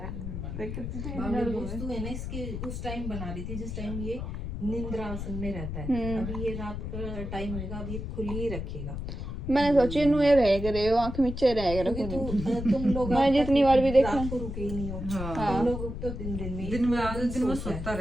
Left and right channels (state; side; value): noise; left; rumble, 6 dB below the sound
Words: है दोस्तों है ना इसके उस टाइम बना रही थी जिस टाइम ये निंद्रा आसन में रहता है अभी ये रात का टाइम होगा अब ये खुली ही रखेगा मैंने सोची इनू ये रह करे आँख नीचे रह करे तुम लोग मैंने जितनी बार भी देखा रात को रुके ही नहीं हो तुम लोग तो दिन में सोता